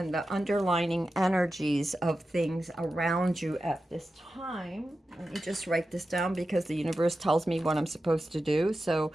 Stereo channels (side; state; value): both; normal; correlation 0.92